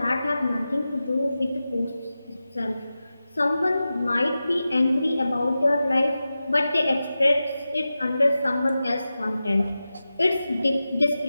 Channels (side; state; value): both; inverted; correlation -0.94